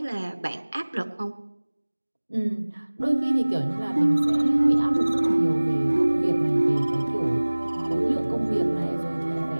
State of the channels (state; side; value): inverted; both; correlation -1.00